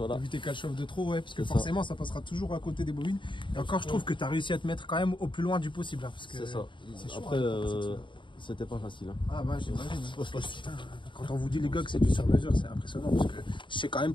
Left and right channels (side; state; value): right; late; 0.23 ms